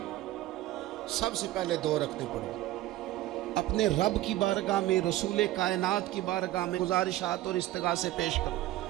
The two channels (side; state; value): left; quieter; 15.6 dB